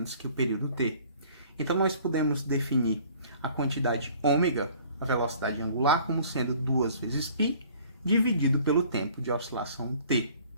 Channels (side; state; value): both; inverted; correlation -0.53